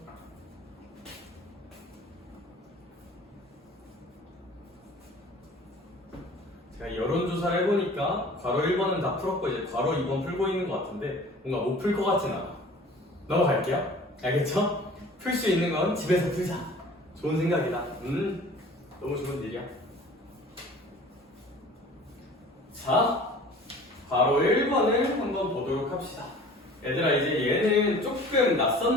제가 여론조사를 해보니까 괄호 1번은 다 풀었고 이제 괄호 2번 풀고 있는 것 같은데 뭔가 못 풀 것 같진 않아. 넘어갈게요. 알겠죠? 풀 수 있는 건 집에서 풀자. 좋은 생각이다. 너무 좋은 일이야. 자, 괄호 1번을 한번 보도록 합시다. 얘들아 이제 얘는 조금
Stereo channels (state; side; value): normal; both; correlation 0.46